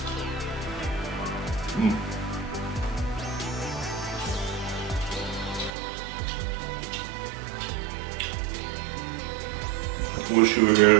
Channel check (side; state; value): left; drops out; at 5.7 s